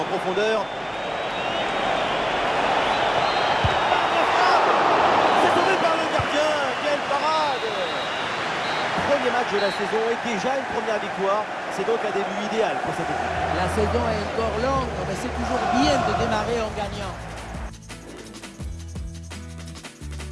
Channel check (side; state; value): both; identical; correlation 1.00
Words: profondeur. de la saison et déjà une première victoire. C'est donc un début idéal pour cette équipe. La saison est encore longue, mais c'est toujours bien de démarrer en gagnant.